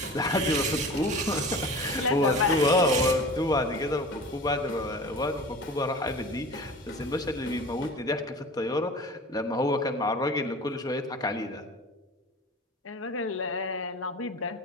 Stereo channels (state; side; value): normal; both; correlation 0.38